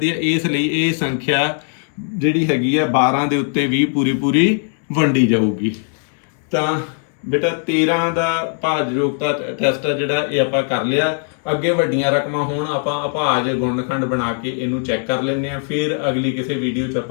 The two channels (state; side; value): silent; right; 56 dB below the other